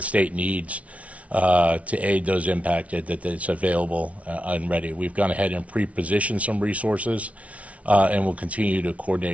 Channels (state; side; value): late; left; 0.065 ms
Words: state needs to aid those impacted, that it's available and ready. We've gone ahead and pre-positioned some resources and we'll continue to